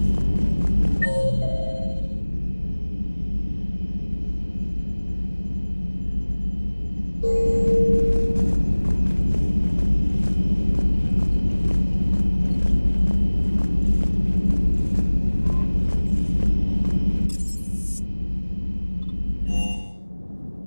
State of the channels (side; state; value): both; inverted; correlation -1.00